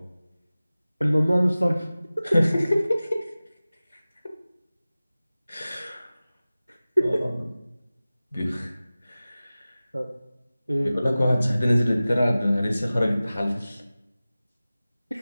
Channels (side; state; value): both; inverted; correlation -0.97